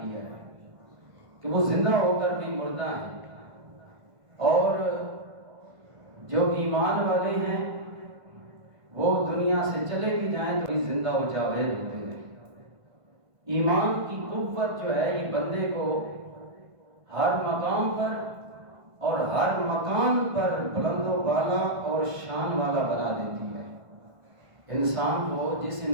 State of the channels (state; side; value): late; left; 1.5 ms